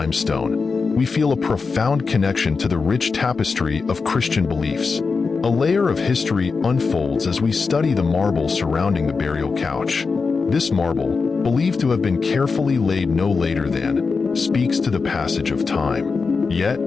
we feel a profound connection to the rich tapestry of Christian beliefs. A layer of history unfolds as we study the marble surrounding the burial couch. This marble, believed to have been carefully laid no later than, speaks to the passage of time. Yet,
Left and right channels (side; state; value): right; quieter; 4.7 dB